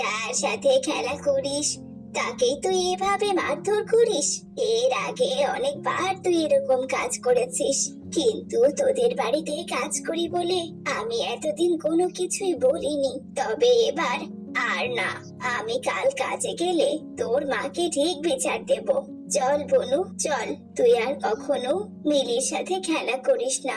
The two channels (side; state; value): both; identical; correlation 1.00